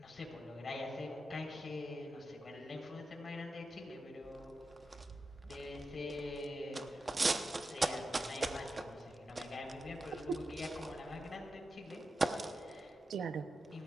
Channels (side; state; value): both; normal; correlation 0.90